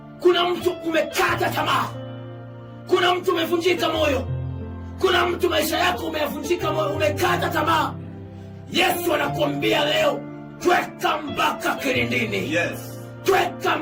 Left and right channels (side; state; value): both; identical; correlation 1.00